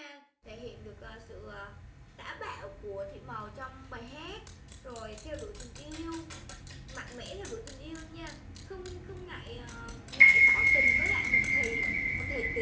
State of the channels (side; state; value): both; identical; correlation 1.00